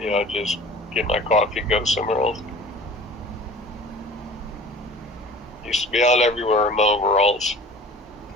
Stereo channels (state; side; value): normal; both; correlation 0.43